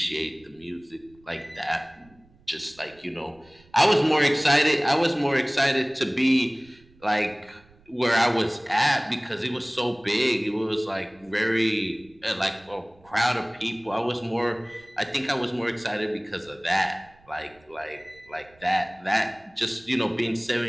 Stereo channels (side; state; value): right; noise; rumble, 29 dB below the sound